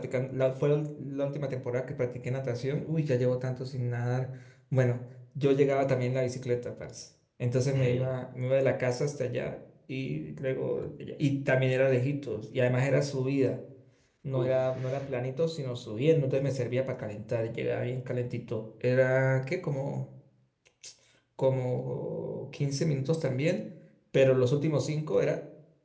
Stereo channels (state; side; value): identical; both; correlation 1.00